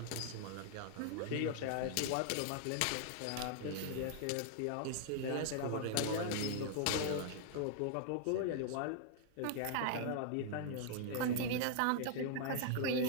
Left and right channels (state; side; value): different; both; correlation -0.01